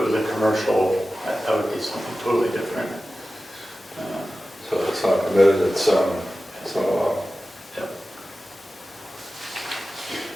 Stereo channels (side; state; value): both; normal; correlation 0.95